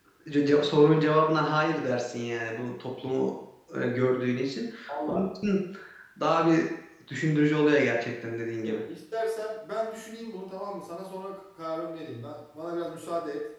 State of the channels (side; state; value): both; identical; correlation 1.00